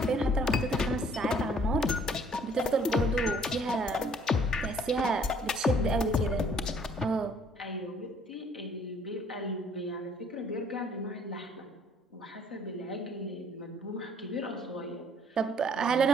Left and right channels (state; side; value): normal; both; correlation 0.60